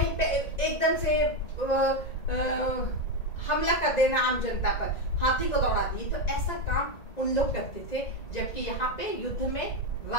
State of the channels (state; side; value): late; right; 1.9 ms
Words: पे एकदम से हमला कर देना आम जनता पर, हाथी को दौड़ा दिए, तो ऐसा काम उन लोग करते थे। जबकि यहाँ पे युद्ध में